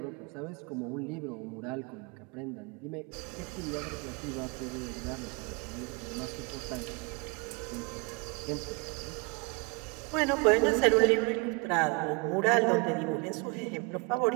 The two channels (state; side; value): quieter; left; 29.5 dB